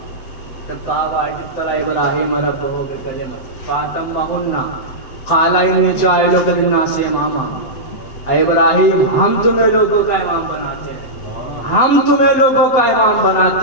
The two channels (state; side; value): late; right; 7.7 ms